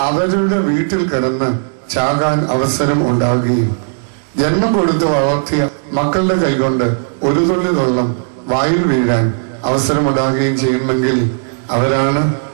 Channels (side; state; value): left; silent; digital silence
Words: അവരുടെ വീട്ടിൽ കിടന്ന് ചാകാൻ അവസരം ഉണ്ടാകുകയും ജന്മം കൊടുത്ത് വളർത്തിയ മക്കളുടെ കൈകൊണ്ട് ഒരു തുള്ളി വെള്ളം വായിൽ വീഴാൻ അവസരമുണ്ടാകുകയും ചെയ്യുമെങ്കിൽ അവരാണ്